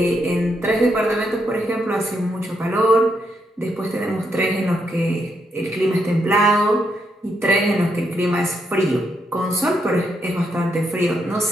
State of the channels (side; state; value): both; normal; correlation 0.79